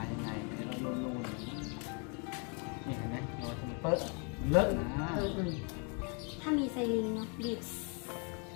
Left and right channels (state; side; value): quieter; right; 36.4 dB